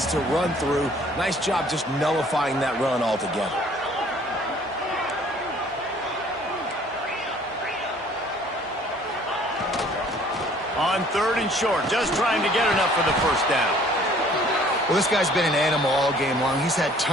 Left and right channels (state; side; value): normal; both; correlation 0.56